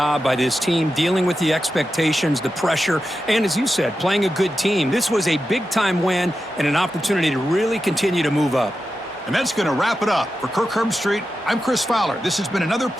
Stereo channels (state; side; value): normal; both; correlation 0.90